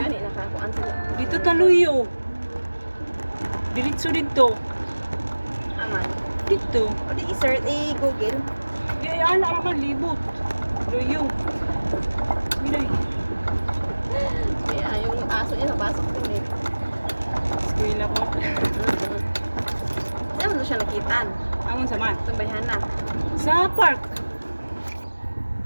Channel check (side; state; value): both; inverted; correlation -1.00